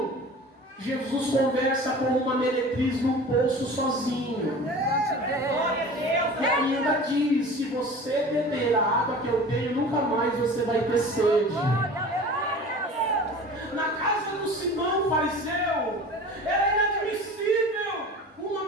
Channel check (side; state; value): both; normal; correlation 0.39